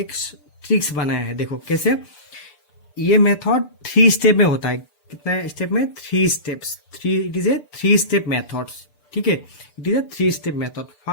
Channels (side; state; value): right; late; 6.8 ms